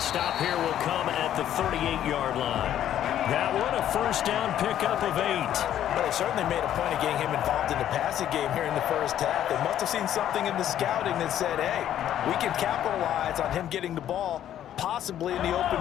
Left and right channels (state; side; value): quieter; right; 11.1 dB